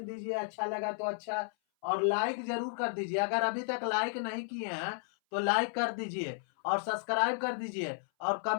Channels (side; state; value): right; silent; 56 dB below the other